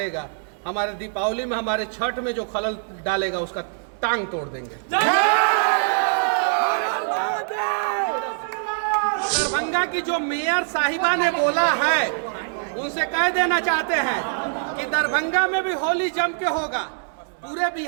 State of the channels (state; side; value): silent; left; digital silence